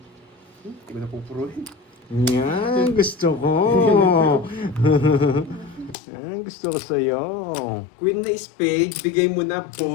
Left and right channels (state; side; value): drops out; right; at 6.0 s